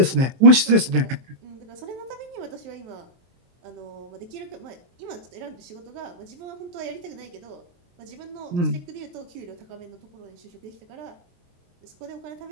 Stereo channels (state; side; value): late; left; 23 ms